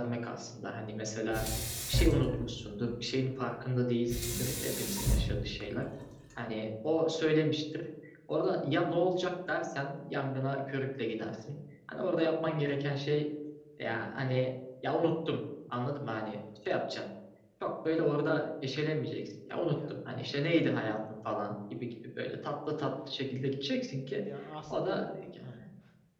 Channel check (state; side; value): identical; both; correlation 1.00